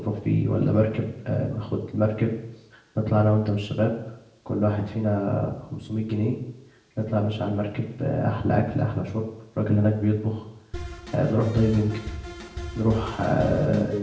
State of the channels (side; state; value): both; identical; correlation 1.00